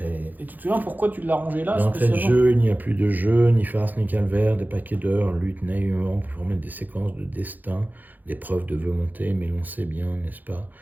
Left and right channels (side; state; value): left; late; 0.085 ms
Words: Et tu te souviens pourquoi tu l'as rangée là D'entrée de spécialement? jeu, il n'y a plus de jeu, ni farce, ni calvaire, des paquets d'heures luttent naïvement pour former des séquences de destin, des preuves de volonté, mais l'on sait bien, n'est-ce pas,